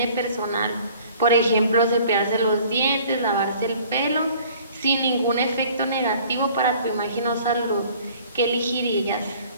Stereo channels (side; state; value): both; inverted; correlation -0.52